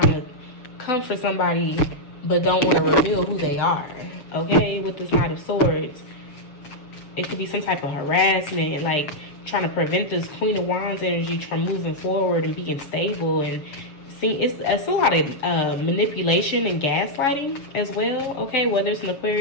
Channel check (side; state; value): right; late; 7.4 ms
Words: to come for somebody but don't want to reveal who they are, okay? With this Knight of Swords. It could be some type of harassment, like trying to prevent this Queen of Wands energy from moving forward and being stable. And it's a lot of manipulation and gaslighting as well, okay? Whether it's an